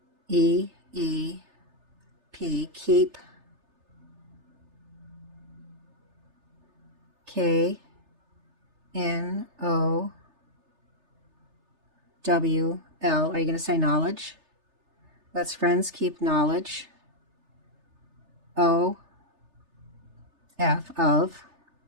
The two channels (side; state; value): left; late; 3.3 ms